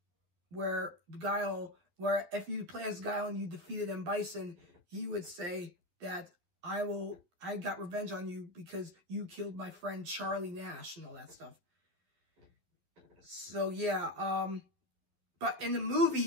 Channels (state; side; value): late; left; 12 ms